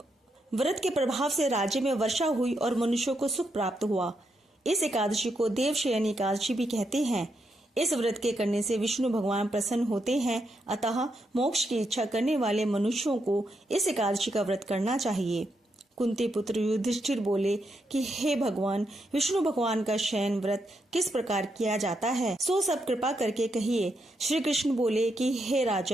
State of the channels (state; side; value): normal; both; correlation 0.81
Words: व्रत के प्रभाव से राज्य में वर्षा हुई और मनुष्यों को सुख प्राप्त हुआ। इस एकादशी को देवशयनी एकादशी भी कहते हैं। इस व्रत के करने से विष्णु भगवान प्रसन्न होते हैं, अतः मोक्ष की इच्छा करने वाले मनुष्यों को इस एकादशी का व्रत करना चाहिए। कुंती पुत्र युधिष्ठिर बोले कि हे भगवान, विष्णु भगवान का शयन व्रत किस प्रकार किया जाता है, सो सब कृपा करके कहिए। श्री कृष्ण बोले कि हे